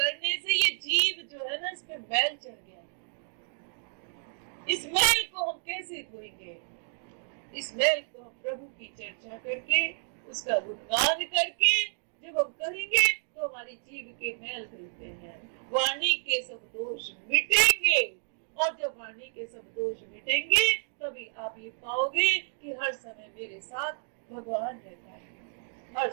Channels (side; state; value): left; silent; digital silence